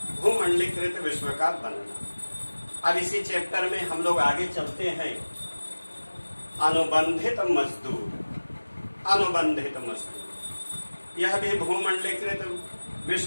भूमंडलीकृत विश्व का बनना। अब इसी चैप्टर में हम लोग आगे चलते हैं। अनुबंधित मजदूर, यह भी भूमंडलीकृत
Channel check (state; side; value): inverted; both; correlation -1.00